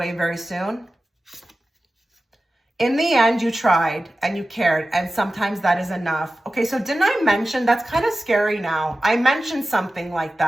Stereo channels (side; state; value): both; normal; correlation 0.95